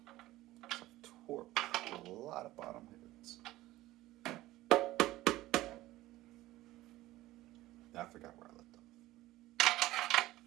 Torque a lot of bottom hits. I forgot where I left off.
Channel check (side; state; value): left; quieter; 16.8 dB